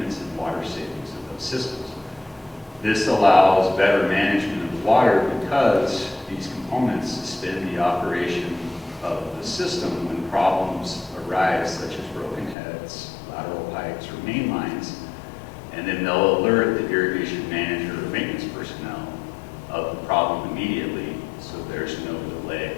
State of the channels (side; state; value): right; drops out; at 12.6 s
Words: and water savings of those systems. This allows better management of water because these components suspend the operation of the system when problems arise, such as broken heads, lateral pipes, or main lines, and then they'll alert the irrigation manager or maintenance personnel of the problem immediately, so there's no delay.